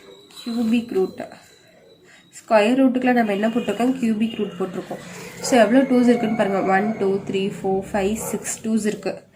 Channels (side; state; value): both; identical; correlation 1.00